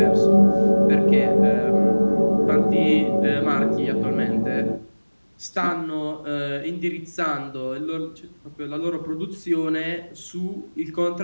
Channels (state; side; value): inverted; both; correlation -1.00